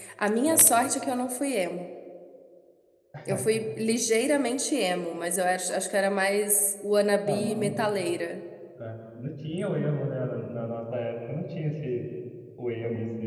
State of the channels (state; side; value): identical; both; correlation 1.00